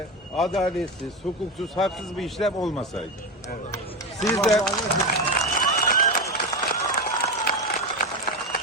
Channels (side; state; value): both; normal; correlation 0.16